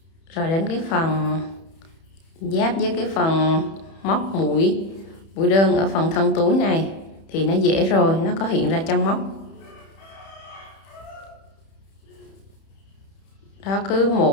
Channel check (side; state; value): right; late; 31 ms